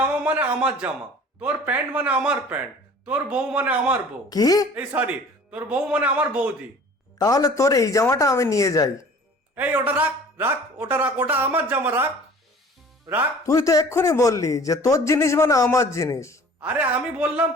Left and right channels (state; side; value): normal; both; correlation 0.47